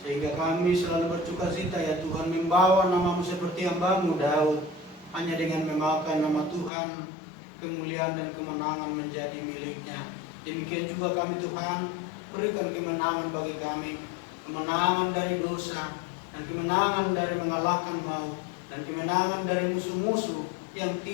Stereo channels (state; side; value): drops out; right; at 6.7 s